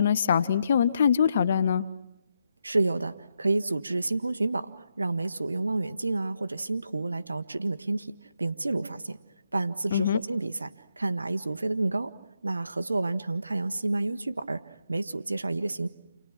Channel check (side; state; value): both; inverted; correlation -0.83